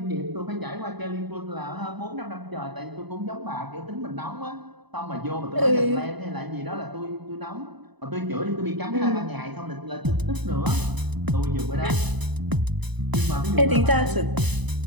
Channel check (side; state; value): left; late; 0.99 ms